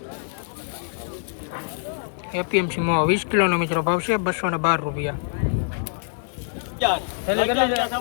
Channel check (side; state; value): right; silent; digital silence